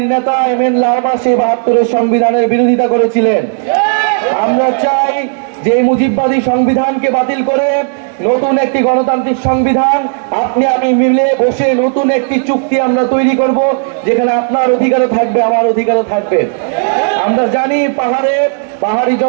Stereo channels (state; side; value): silent; left; 73 dB below the other